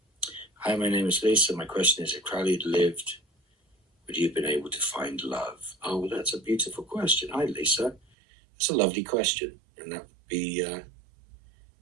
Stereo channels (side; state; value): left; drops out; at 8.0 s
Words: Hi, my name is Lisa. My question is, if Crowley had lived, would you have been able to find love? Oh, well, that's a beautiful question. Hi, Lisa. That's a lovely question, and that would be